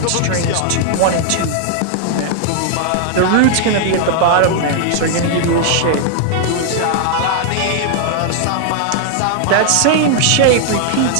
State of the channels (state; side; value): different; both; correlation 0.00